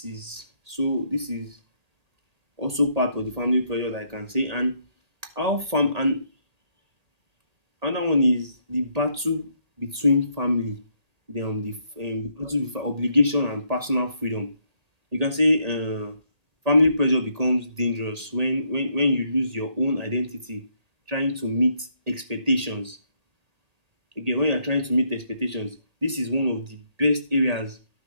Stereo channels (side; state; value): left; late; 1.8 ms